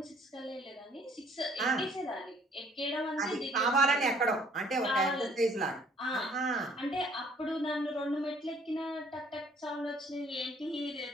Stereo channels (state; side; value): normal; both; correlation 0.60